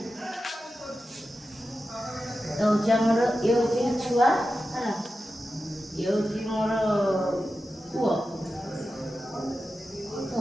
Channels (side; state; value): both; normal; correlation 0.92